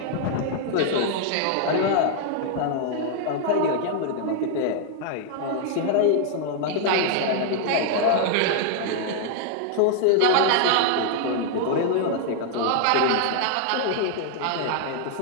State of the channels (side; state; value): both; different; correlation 0.00